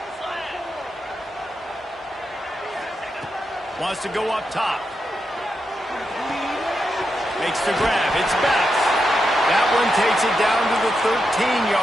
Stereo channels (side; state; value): both; normal; correlation 0.86